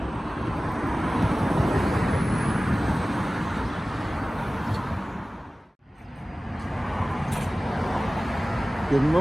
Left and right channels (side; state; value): both; normal; correlation 0.97